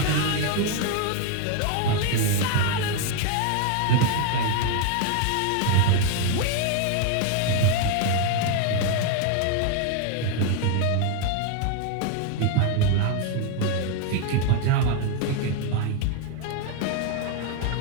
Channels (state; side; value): different; both; correlation 0.01